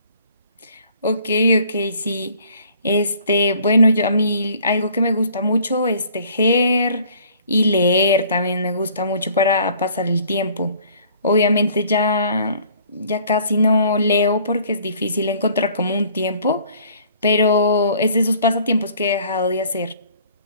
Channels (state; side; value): inverted; both; correlation -0.55